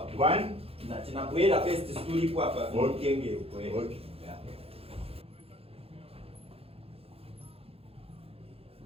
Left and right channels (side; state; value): left; late; 0.28 ms